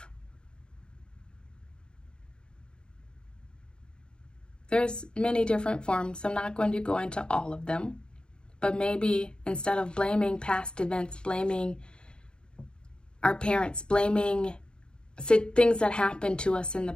There's many different forms. I'm not going to go into all of them, but maybe instead of blaming past events, blaming our parents, blaming things that happened to us in the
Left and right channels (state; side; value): late; right; 0.050 ms